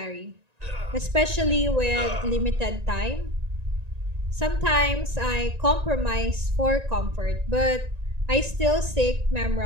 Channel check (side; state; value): left; late; 1.9 ms